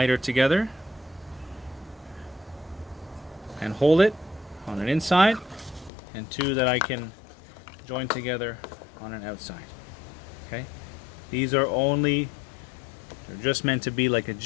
together and hold it on an inside, and two that I can join together on an outside. Okay, these are they're just meant to be like a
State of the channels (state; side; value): drops out; right; at 5.9 s